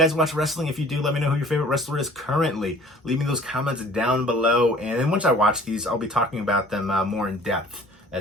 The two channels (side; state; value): both; normal; correlation 0.51